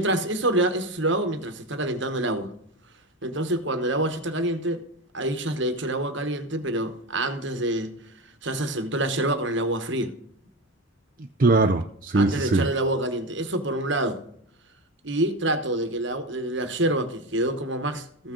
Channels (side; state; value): both; normal; correlation 0.21